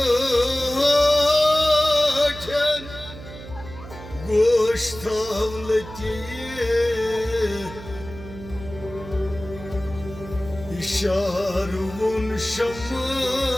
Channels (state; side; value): noise; right; hum, 14 dB below the sound